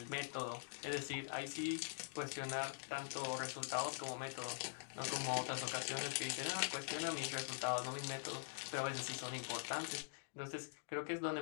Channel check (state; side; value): silent; right; digital silence